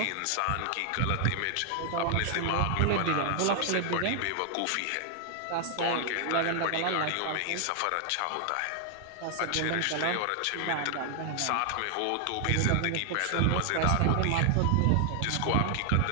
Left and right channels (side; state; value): both; different; correlation 0.00